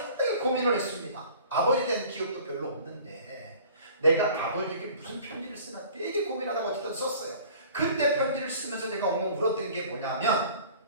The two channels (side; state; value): both; inverted; correlation -0.47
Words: 고민을 했습니다. 아버지에 대한 기억도 별로 없는데 내가 아버지에게 무슨 편지를 쓰나 되게 고민하다가 어쨌든 썼어요. 그때 편지를 쓰면서 내가 엉엉 울었던 게 뭐냐면